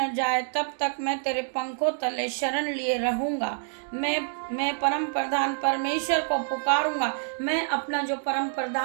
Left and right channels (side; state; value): left; silent; digital silence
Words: जाए तब तक मैं तेरे पंखों तले शरण लिए रहूँगा। मैं परम प्रधान परमेश्वर को पुकारूंगा। मैं अपना जो परम